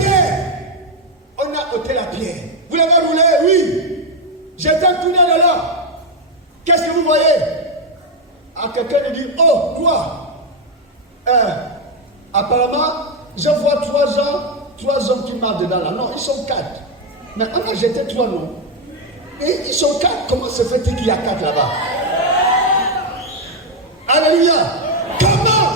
On a ôté la pierre. Vous l'avez roulé? Oui. J'étais un tunnel là. Qu'est-ce que vous voyez? Quelqu'un lui dit, oh, quoi? Apparemment, je vois 3 hommes qui marchent dedans là. Non, ils sont 4. Mais on a jeté 3 noms. Et ils sont 4. Comment se fait-il qu'il y a 4 là-bas? Alléluia.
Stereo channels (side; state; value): both; normal; correlation 0.04